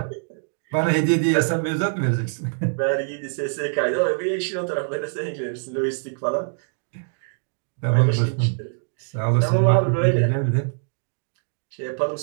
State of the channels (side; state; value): left; silent; digital silence